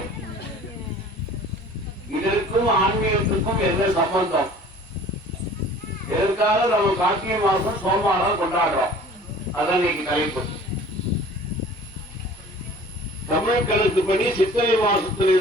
இதற்கும் ஆன்மீகத்துக்கும் என்ன சம்பந்தம்? எதற்காக நம்ம கார்த்திகை மாசம் சோமவாரம் கொண்டாடுறோம்? அதான் இன்னைக்கு தலைப்பு. தமிழ் கணக்குப்படி சித்திரை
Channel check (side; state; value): both; normal; correlation 0.47